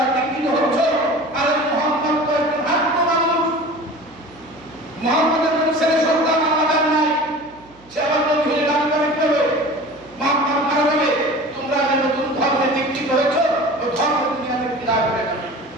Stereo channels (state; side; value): noise; right; hum, 28 dB below the sound